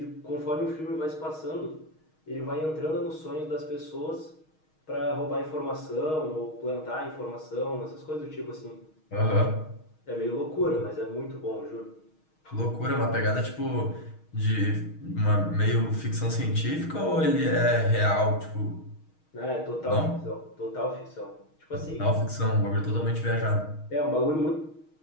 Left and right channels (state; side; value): late; right; 6.4 ms